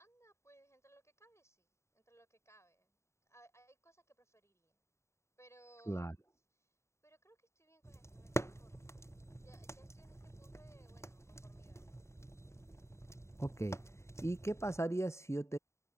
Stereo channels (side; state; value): right; late; 0.14 ms